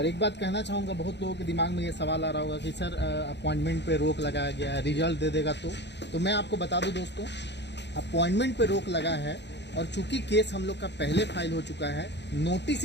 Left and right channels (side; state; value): right; late; 0.50 ms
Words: एक बात कहना चाहूँगा, बहुत लोगों के दिमाग में ये सवाल आ रहा होगा कि सर अपॉइंटमेंट पे रोक लगाया गया है, रिजल्ट दे देगा तो मैं आपको बता दूं दोस्तों, अपॉइंटमेंट पे रोक लगा है और चूंकि केस हम लोग का पहले फाइल हो चुका है, नोटिस